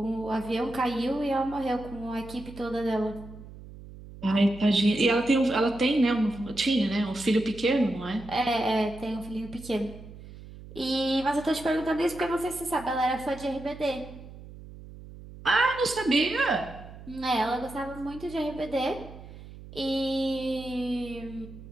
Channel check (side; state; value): right; noise; hum, 16 dB below the sound